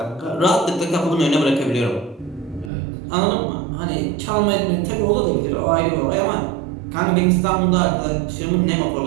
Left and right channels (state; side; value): drops out; left; at 2.7 s